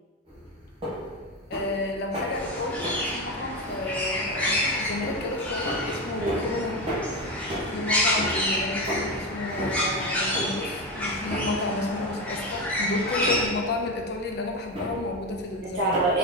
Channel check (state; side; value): normal; both; correlation 0.17